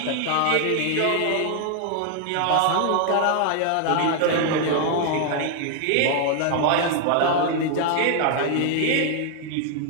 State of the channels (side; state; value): both; different; correlation 0.00